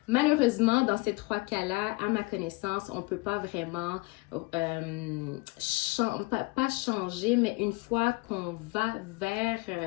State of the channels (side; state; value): right; quieter; 25.7 dB